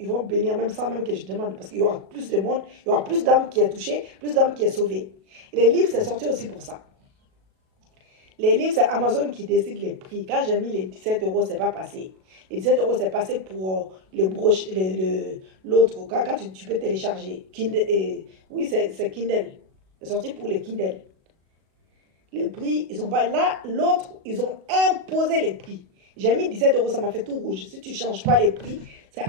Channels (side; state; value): left; late; 37 ms